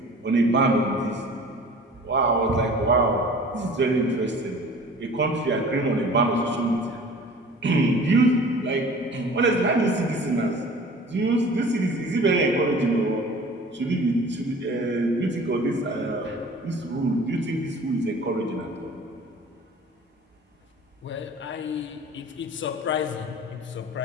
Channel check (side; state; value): both; normal; correlation 0.45